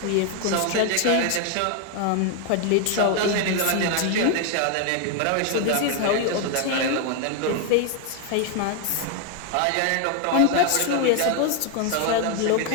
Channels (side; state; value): both; different; correlation 0.01